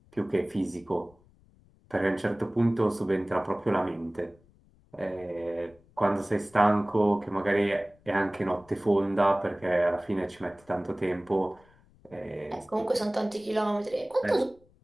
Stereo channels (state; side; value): noise; left; rumble, 30 dB below the sound